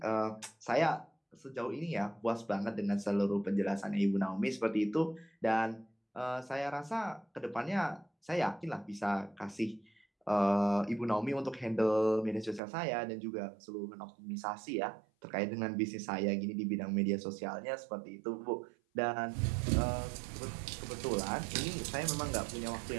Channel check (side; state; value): left; drops out; at 12.6 s